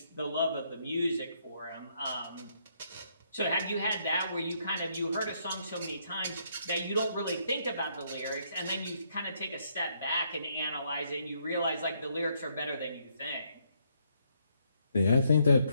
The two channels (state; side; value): inverted; both; correlation -0.73